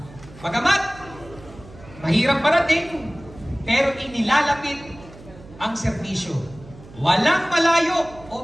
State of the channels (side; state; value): right; noise; hum, 19 dB below the sound